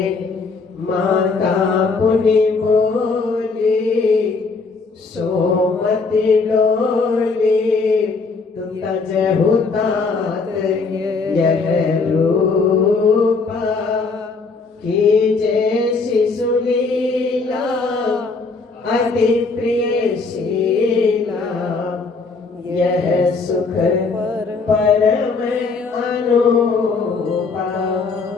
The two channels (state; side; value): quieter; right; 4.3 dB